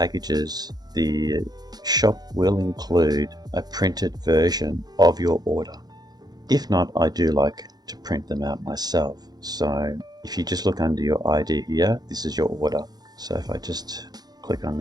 the shop will include a printed version of your order. If not, I do like to print them out myself. So if you just look under your ID here, this is your order. So if I just click on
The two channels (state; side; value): late; left; 0.19 ms